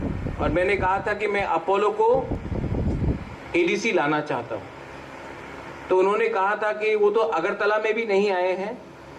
और मैंने कहा था कि मैं अपोलो को एडीसी लाना चाहता हूं। तो उन्होंने कहा था कि वो तो अगरतला में भी नहीं आए हैं,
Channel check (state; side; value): identical; both; correlation 1.00